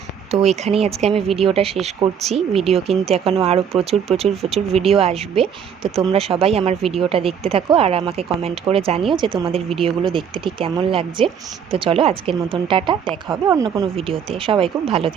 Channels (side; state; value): left; quieter; 7.7 dB